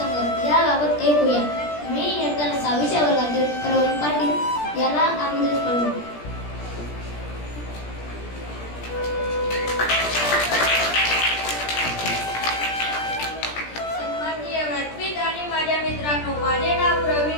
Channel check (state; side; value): late; right; 17 ms